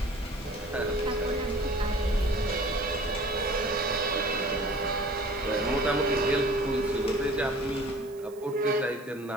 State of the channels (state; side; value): noise; right; hiss, 24 dB below the sound